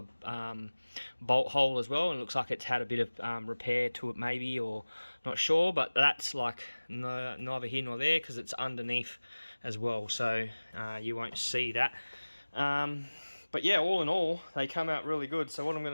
bolt hole as well, and it looks like it's had a bit of repair to it maybe, or not sure, but that's like neither here nor there because it's underneath as well, so you won't see that. But yeah, all in all, they come out really good. So what I'm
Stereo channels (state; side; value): inverted; both; correlation -1.00